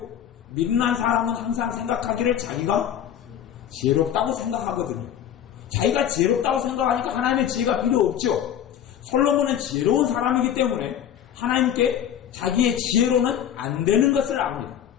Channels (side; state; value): right; quieter; 9.8 dB